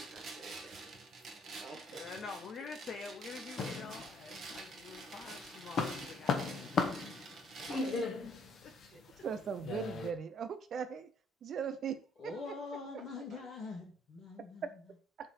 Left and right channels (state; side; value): normal; both; correlation 0.64